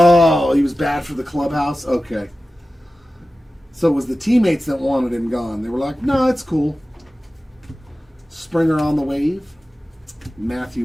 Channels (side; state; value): both; normal; correlation 0.95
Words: he was bad for the clubhouse? Okay. So it was the teammates that wanted him gone. They were like, no, it's cool. Springer on the wave.